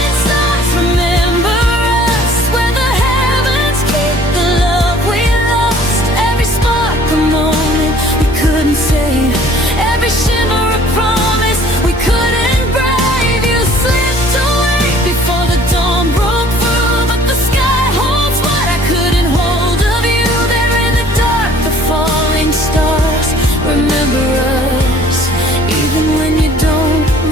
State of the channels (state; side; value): normal; both; correlation 0.54